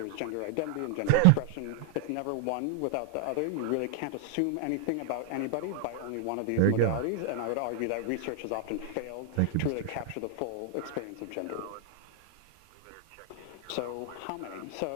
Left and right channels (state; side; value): different; both; correlation 0.00